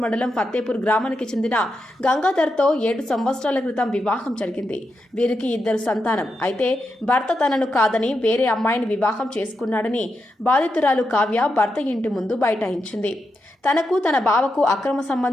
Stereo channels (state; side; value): normal; both; correlation 0.86